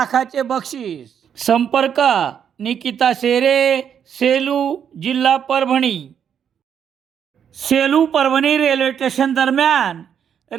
बक्षीस। संपर्क निकिता शेरे, सेलू, जिल्हा परभणी। सेलू परभणी रेल्वे स्टेशन दरम्यान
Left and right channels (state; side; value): quieter; left; 8.3 dB